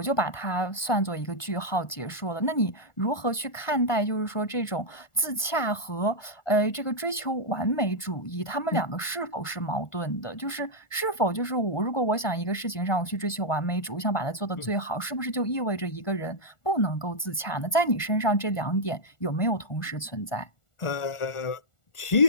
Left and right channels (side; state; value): right; late; 1.4 ms